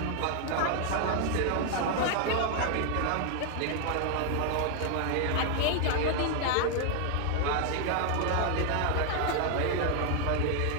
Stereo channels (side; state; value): both; different; correlation 0.00